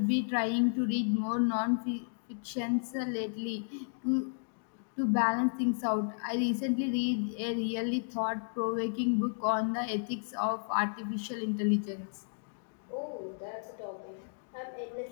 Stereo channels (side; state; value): right; silent; digital silence